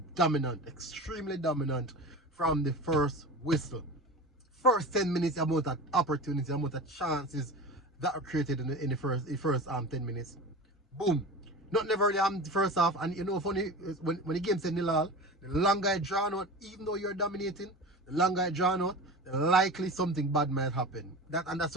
dominant, extremely dominant from the first whistle. First 10 minutes, the amount of opportunity, the amount of chances that are created in the first 10 minutes. Boom. Not never really the first half. And you know, funny, when the game said nil all, the longer I draw out, even though you're dominating, the longer I draw out, the likely something bad might happen. And that's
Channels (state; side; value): normal; both; correlation 0.32